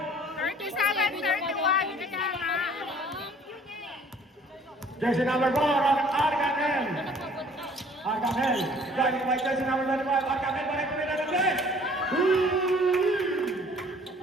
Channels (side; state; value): both; normal; correlation 0.54